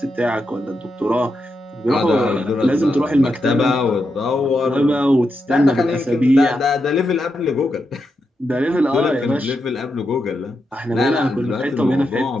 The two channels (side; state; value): both; normal; correlation 0.85